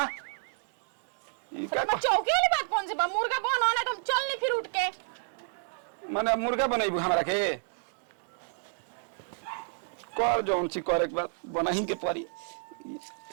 ई का चौकी वाली बात कौन सी बा मुर्गा बनो ना तुम चल नहीं फिर उठ के माने मुर्गा बनाइबू हमरा के कर जौन सी करे के बाद बनाही के पड़ी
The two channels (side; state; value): left; silent; digital silence